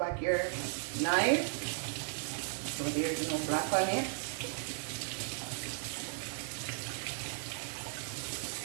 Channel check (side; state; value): left; silent; 54 dB below the other